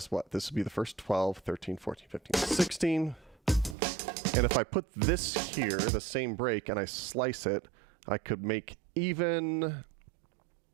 what? This would be the first 12, 13, 14, 15, 16. And if I put this here, the same break, and I slice it, I could make even.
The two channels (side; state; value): left; drops out; at 3.8 s